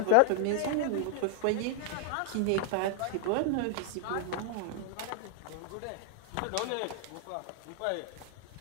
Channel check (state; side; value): different; both; correlation 0.00